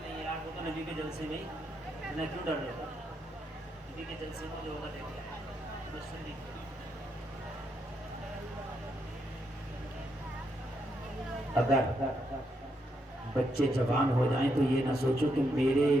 نہیں ہے یار، وہ تو نبی کے جلسے میں ہی، میں کیوں ڈر رہا ہوں؟ نبی کے جلسے میں جو ہوگا دیکھ لیں۔ اگر بچے جوان ہو جائیں تو یہ نہ سوچو کہ میرے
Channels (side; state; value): both; normal; correlation 0.79